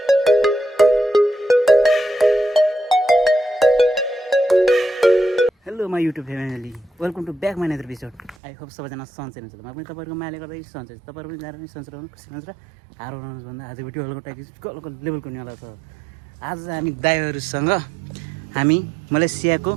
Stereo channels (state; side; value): drops out; left; at 8.3 s